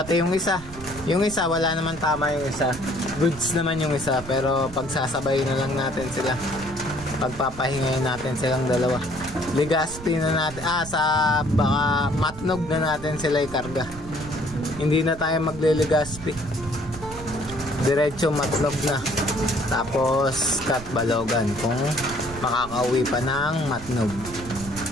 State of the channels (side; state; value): right; noise; rumble, 14 dB below the sound